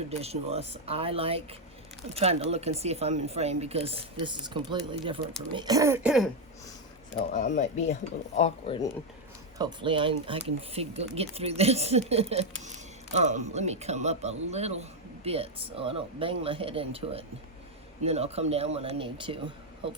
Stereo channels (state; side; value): normal; both; correlation 0.03